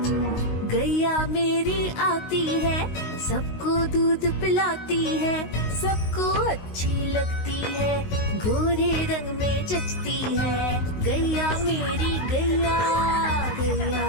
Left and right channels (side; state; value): right; late; 19 ms